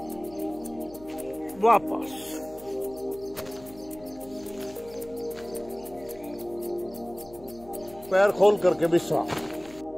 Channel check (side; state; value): left; noise; hum, 21 dB below the sound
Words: वापस पैर खोल करके विश्राम।